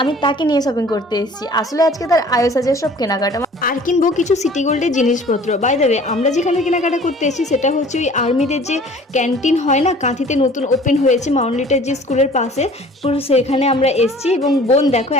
আমি তাকে নিয়ে শপিং করতে এসেছি। আসলে আজকে তার আয়োসাজের সব কেনাকাটা, আর কিনবো কিছু সিটি গোল্ডের জিনিসপত্র। বাই দ্য ওয়ে, আমরা যেখানে কেনাকাটা করতে এসেছি সেটা হচ্ছে ওই আর্মিদের যে ক্যান্টিন হয় না, কাঁথিতে নতুন ওপেন হয়েছে মাউন্টলিটার যে স্কুলের পাশে, পুরো সেখানে আমরা এসেছি। এবং বোন দেখো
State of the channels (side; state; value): both; normal; correlation 0.49